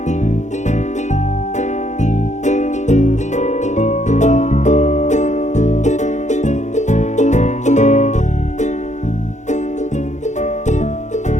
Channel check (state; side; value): late; right; 0.34 ms